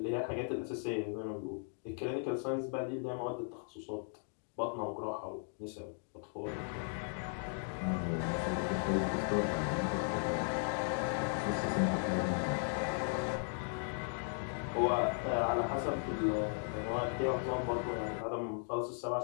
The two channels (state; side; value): silent; right; 53 dB below the other